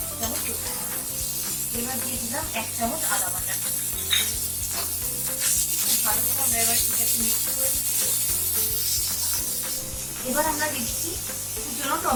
এবার দিয়ে দিলাম 1 চামচ আদা বাটা। ভালো করে আমরা এবার এটাকে মিক্স করে দিচ্ছি। এবার আমরা দিচ্ছি কুচনো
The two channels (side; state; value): both; identical; correlation 1.00